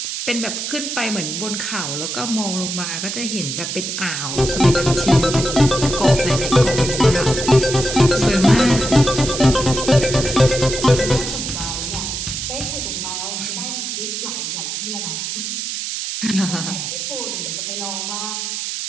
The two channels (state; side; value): noise; right; hiss, 4 dB below the sound